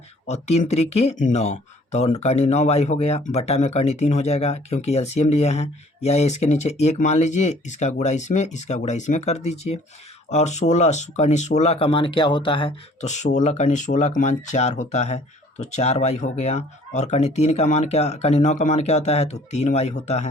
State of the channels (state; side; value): normal; both; correlation 0.55